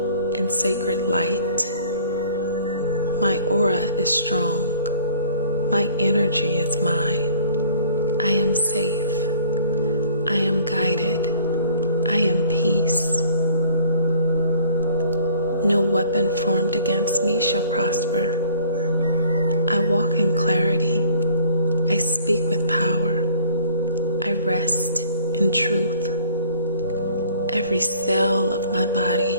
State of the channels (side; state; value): both; inverted; correlation -0.52